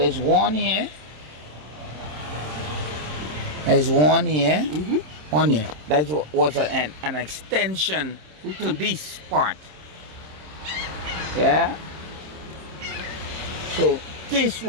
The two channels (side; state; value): left; late; 26 ms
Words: one here. There's one here. One here. That was an extension to this part. Yeah. So this